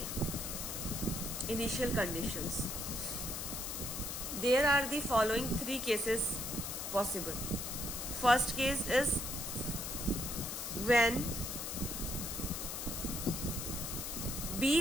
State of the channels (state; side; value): noise; left; hiss, 4 dB below the sound